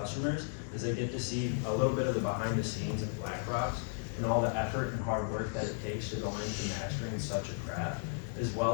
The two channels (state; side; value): silent; right; 55 dB below the other